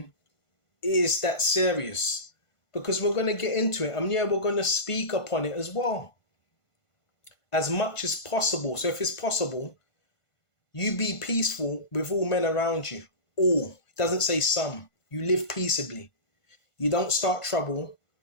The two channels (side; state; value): right; late; 1.5 ms